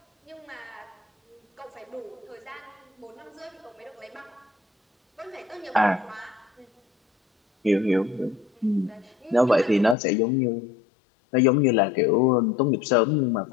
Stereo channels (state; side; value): drops out; right; at 10.0 s